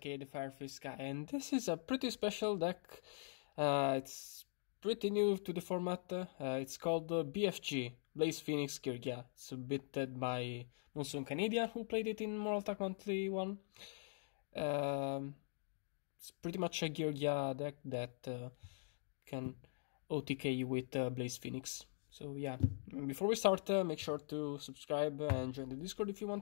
the Firefish guy, and this is a pretty special deck. It's pretty new to the format. It's called BFG, Blaze Phoenix Geargia. It's submitted by Monsoon Canadian, who played it in Mortal Attack Monthly 1. It's pretty much a Geargia deck that can OTK you with Blaze Phoenix. So yeah, before we start, make sure to subscribe and join the Discord if you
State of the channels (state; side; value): silent; right; digital silence